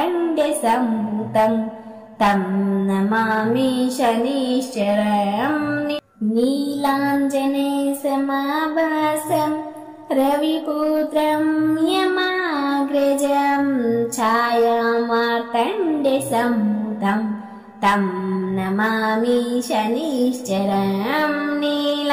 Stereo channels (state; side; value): identical; both; correlation 1.00